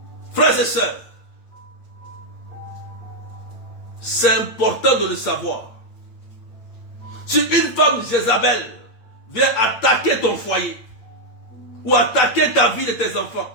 Frères et sœurs, c'est important de le savoir. Si une femme Jézabel vient attaquer ton foyer ou attaquer ta vie et tes enfants,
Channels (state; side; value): late; right; 8.8 ms